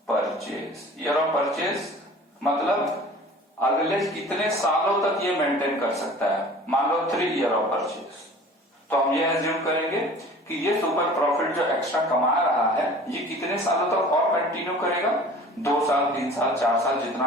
purchase. Year of purchase मतलब अगले कितने सालों तक ये मेंटेन कर सकता है। मान लो 3 ईयर ऑफ परचेज, तो हम ये एज्यूम करेंगे कि ये सुपर प्रॉफिट जो एक्स्ट्रा कमा रहा है ये कितने सालों तक और कंटिन्यू करेगा? 2 साल, 3 साल, 4 साल,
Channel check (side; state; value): both; normal; correlation 0.44